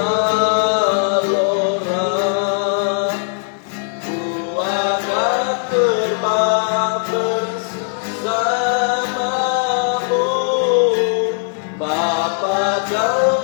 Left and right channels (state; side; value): silent; right; 59 dB below the other